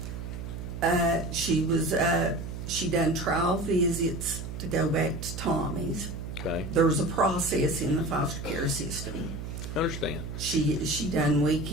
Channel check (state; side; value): noise; right; hum, 7 dB below the sound